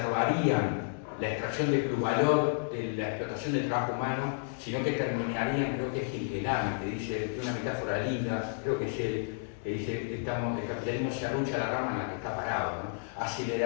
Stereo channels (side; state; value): right; silent; digital silence